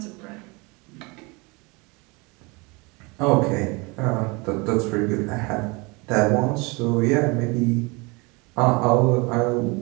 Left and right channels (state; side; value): quieter; left; 27.3 dB